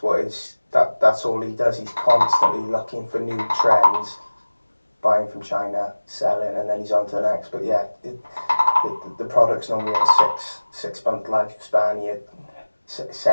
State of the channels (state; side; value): inverted; both; correlation -1.00